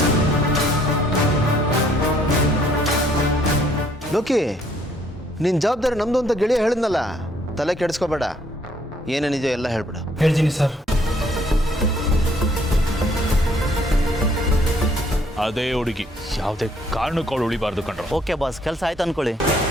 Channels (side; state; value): both; normal; correlation 0.65